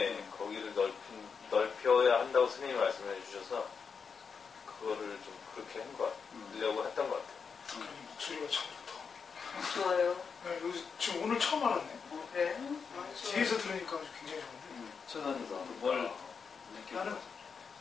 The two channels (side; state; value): right; quieter; 5.8 dB